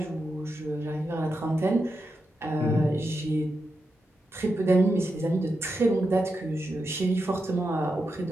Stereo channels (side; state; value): both; normal; correlation 0.87